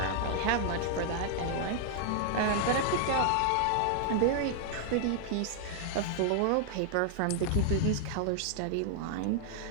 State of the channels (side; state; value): both; different; correlation -0.01